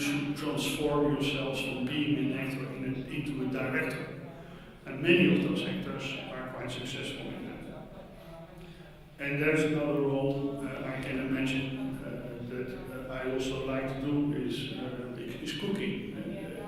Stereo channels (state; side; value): identical; both; correlation 1.00